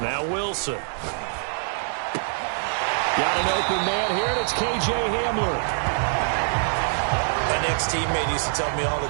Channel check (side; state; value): left; silent; digital silence